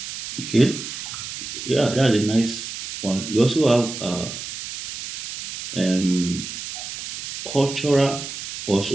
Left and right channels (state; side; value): noise; right; hiss, 8 dB below the sound